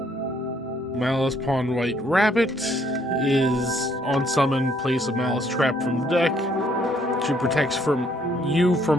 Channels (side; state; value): both; normal; correlation 0.67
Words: Maliss Pawn White Rabbit is on summon, place a Maliss trap from the deck. She protects from